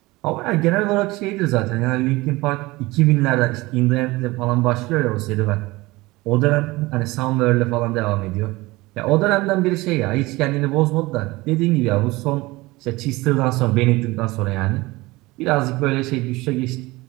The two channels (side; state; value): left; quieter; 21.0 dB